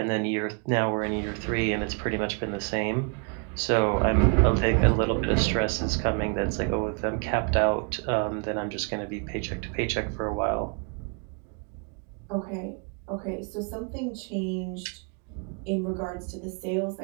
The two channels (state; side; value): quieter; left; 38.6 dB